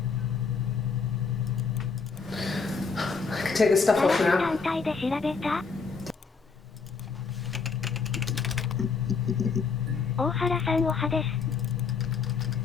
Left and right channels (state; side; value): quieter; right; 5.1 dB